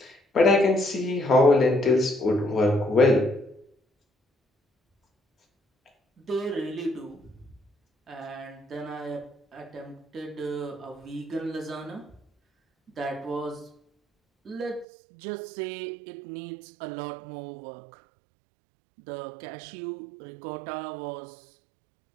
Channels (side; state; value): left; drops out; at 14.9 s